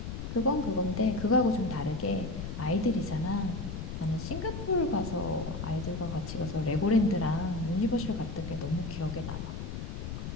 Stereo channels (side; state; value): left; noise; rumble, 6 dB below the sound